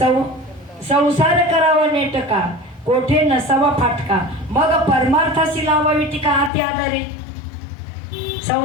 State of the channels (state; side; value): drops out; right; at 6.5 s